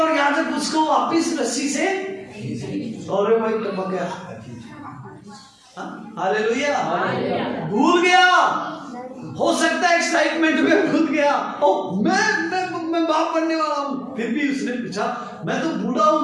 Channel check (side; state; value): both; identical; correlation 1.00